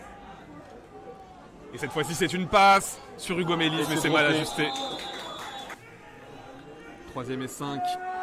Et cette fois-ci, c'est une passe sur Hugo Mélis, mais c'est mal ajusté. 3e et 5.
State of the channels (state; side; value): identical; both; correlation 1.00